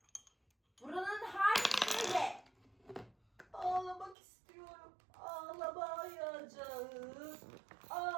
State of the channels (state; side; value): drops out; left; at 4.2 s